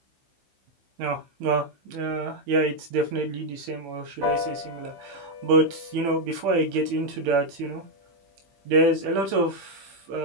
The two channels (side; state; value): left; late; 15 ms